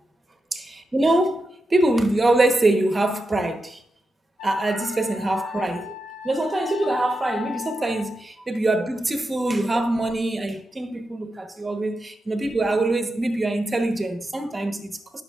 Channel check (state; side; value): normal; both; correlation 0.88